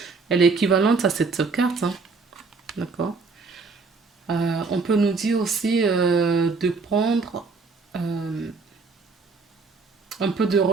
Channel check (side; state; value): left; quieter; 4.3 dB